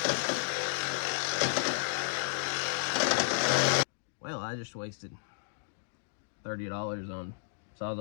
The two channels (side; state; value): right; silent; digital silence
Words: Well, I just wasted $30 on